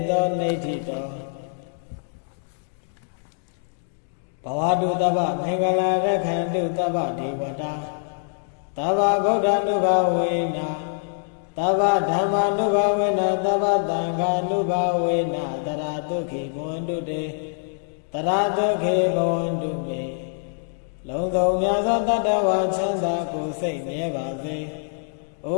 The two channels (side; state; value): right; silent; digital silence